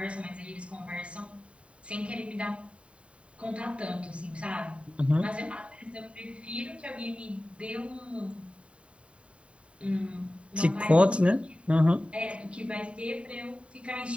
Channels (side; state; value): left; late; 0.061 ms